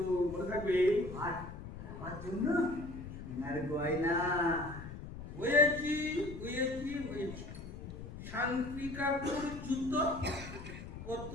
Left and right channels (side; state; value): left; noise; rumble, 11 dB below the sound